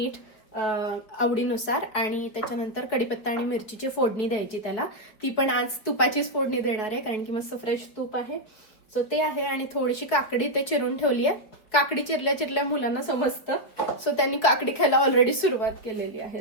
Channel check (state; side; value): late; right; 4.9 ms